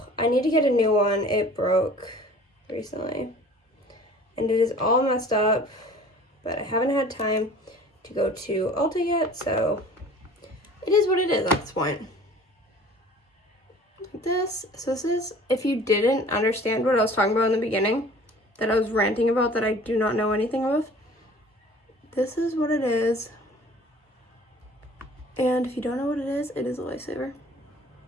I need to get a new one. It broke recently. And it is all messed up, but I haven't had time to go to Ulta yet, so it is what it is at this point. Like this. So this is, if you didn't understand what I was talking about in the beginning, that I was ranting about that I do not know anything of, this is what it is. And if you don't know what it is a lifesaver.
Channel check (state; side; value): normal; both; correlation 0.48